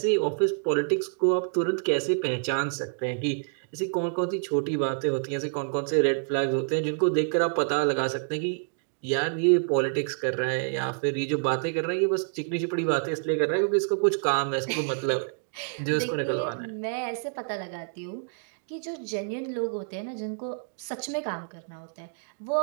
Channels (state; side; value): silent; left; digital silence